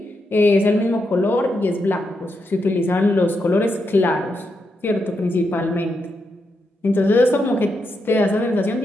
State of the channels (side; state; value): both; normal; correlation 0.83